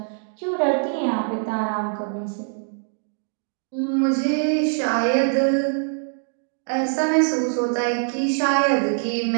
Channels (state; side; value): silent; left; digital silence